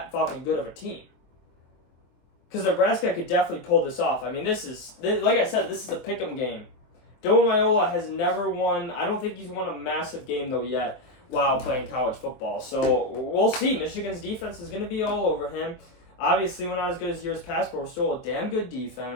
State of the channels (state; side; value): late; right; 23 ms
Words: fucking good of a team. Because Nebraska could definitely pull this off. I mean, like I said, this is a pick'em game. Dylan Raiola has never won. I don't think he's won a massive game, though, yet while playing college football. So we'll see. Michigan's defense is going to be all over him. Obviously, we're not as good as years past, but we're still a damn good